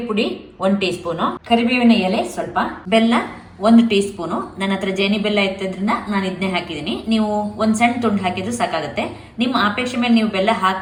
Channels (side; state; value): both; identical; correlation 1.00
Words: ಪುಡಿ 1 ಟೀ ಸ್ಪೂನ್, ಕರಿಬೇವಿನ ಎಲೆ ಸ್ವಲ್ಪ, ಬೆಲ್ಲ 1 ಟೀ ಸ್ಪೂನ್. ನನ್ನ ಹತ್ರ ಜೇನಿ ಬೆಲ್ಲ ಇತ್ತದ್ರಿಂದ ನಾನು ಇದನ್ನೇ ಹಾಕಿದ್ದೀನಿ. ನೀವು ಒಂದ್ ಸಣ್ಣ ತುಂಡು ಹಾಕಿದ್ರು ಸಾಕಾಗುತ್ತೆ. ನಿಮ್ಮ ಅಪೇಕ್ಷೆ ಮೇಲೆ ನೀವು ಬೆಲ್ಲ